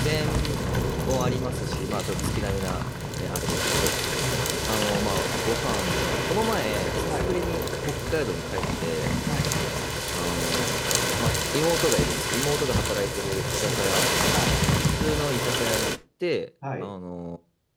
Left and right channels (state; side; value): identical; both; correlation 1.00